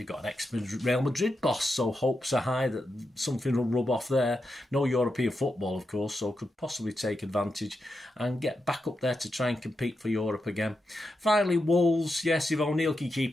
got an ex-Real Madrid boss, so hopes are high that something will rub off there. No European football, of course, so could possibly take advantage and get back up there to try and compete for Europe again. Finally, Wolves, yes, if O'Neill can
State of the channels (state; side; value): normal; both; correlation 0.87